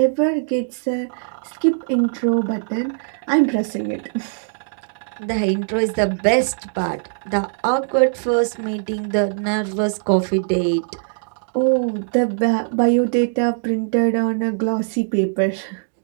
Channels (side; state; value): left; silent; digital silence